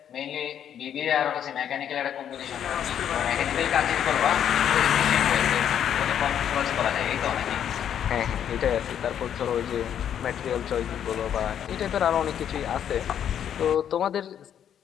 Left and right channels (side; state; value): right; quieter; 9.4 dB